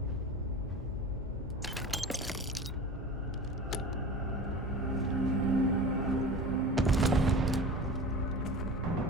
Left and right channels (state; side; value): normal; both; correlation 0.35